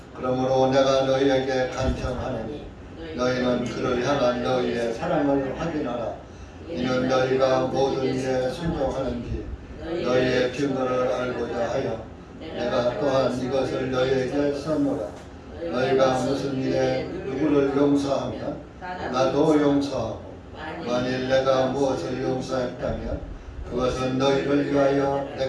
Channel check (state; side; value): identical; both; correlation 1.00